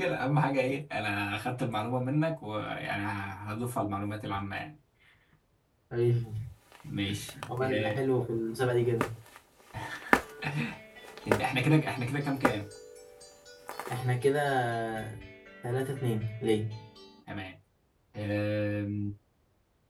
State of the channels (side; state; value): both; identical; correlation 1.00